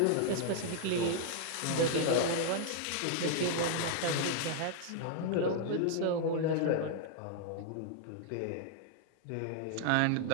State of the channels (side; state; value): both; different; correlation 0.00